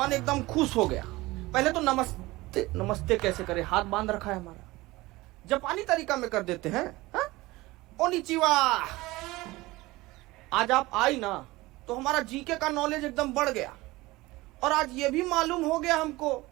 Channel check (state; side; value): quieter; left; 20.1 dB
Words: एकदम खुश हो गया। पहले तो नमस्ते कैसे करे, हाथ बांध रखा है हमारा। जापानी तरीका में कर देते हैं। ओनिचिवा। आज आप आई ना तो हमारा जीके का नॉलेज एकदम बढ़ गया। और आज ये भी मालूम हो गया हमको